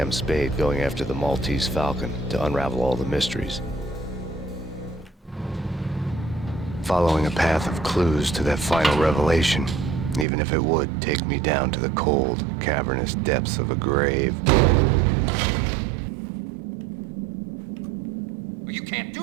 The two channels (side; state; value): left; drops out; at 10.2 s